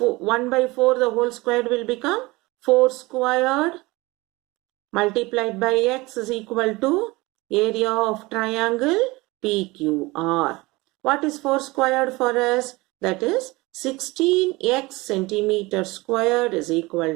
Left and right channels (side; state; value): left; quieter; 22.3 dB